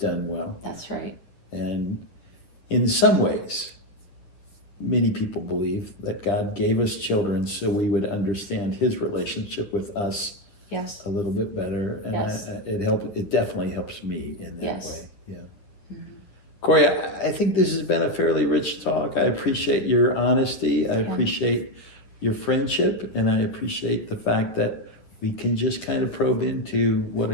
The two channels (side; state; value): right; late; 10 ms